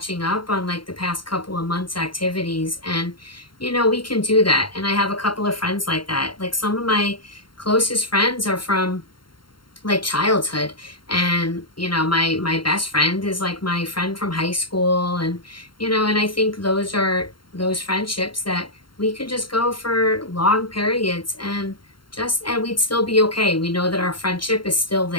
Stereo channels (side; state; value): right; late; 0.73 ms